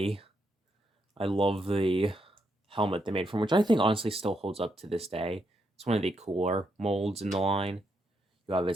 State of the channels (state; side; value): normal; both; correlation 0.79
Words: I love the helmet they made from, which I think honestly still holds up to this day. It's one of the cooler molds in the line. You have